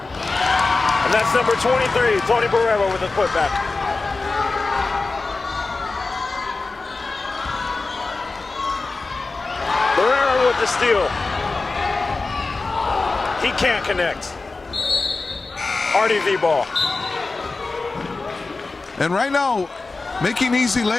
And that's number 23, Tony Barrera with a putback. Barrera with the steal. He can't connect. RDV ball. And right now, making easy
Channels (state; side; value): quieter; right; 3.7 dB